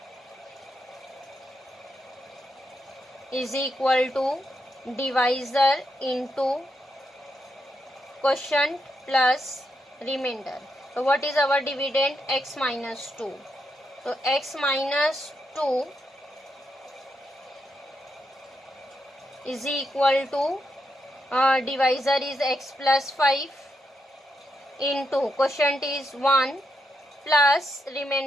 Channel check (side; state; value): both; normal; correlation 0.82